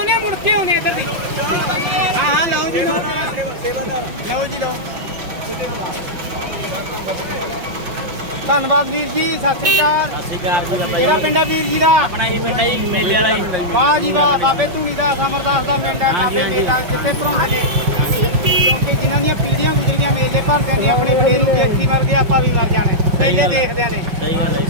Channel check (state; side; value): late; left; 5.7 ms